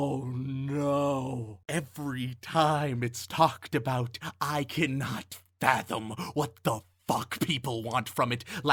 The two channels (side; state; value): both; identical; correlation 1.00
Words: no. Every time it's talked about, I cannot fathom what the fuck people want from it.